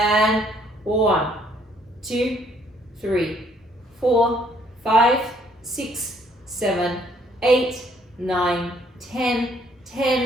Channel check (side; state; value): both; normal; correlation 0.65